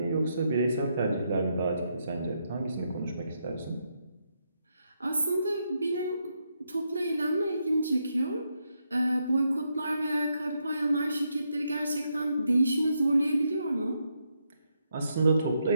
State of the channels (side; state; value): both; inverted; correlation -0.80